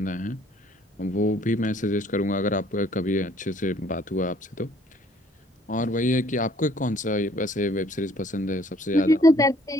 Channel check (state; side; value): normal; both; correlation 0.60